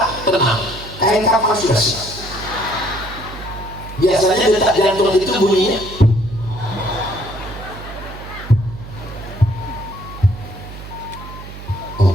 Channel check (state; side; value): noise; right; hum, 13 dB below the sound